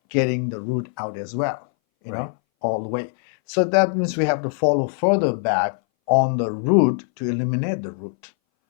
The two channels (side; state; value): right; silent; 61 dB below the other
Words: getting the root out as well, you Right. know, all the way. So that means we have to follow further back on the root to eliminate the root.